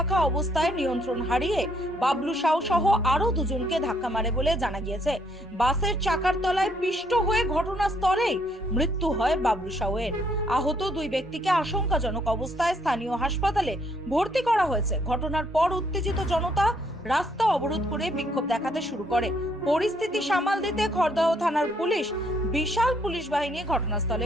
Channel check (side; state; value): both; normal; correlation 0.69